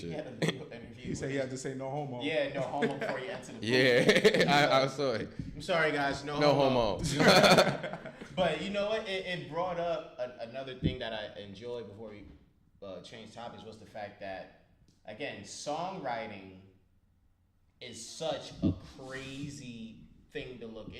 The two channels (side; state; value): both; identical; correlation 1.00